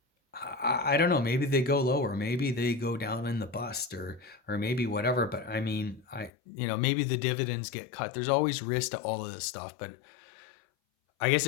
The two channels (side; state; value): right; drops out; at 6.3 s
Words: I don't know. Maybe they go lower. Maybe they go down in the bust, or maybe whatever. But I mean, maybe the dividends get cut. There's always risk to all of this stuff. But I guess